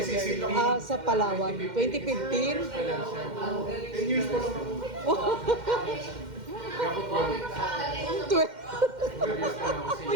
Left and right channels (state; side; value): late; left; 2.1 ms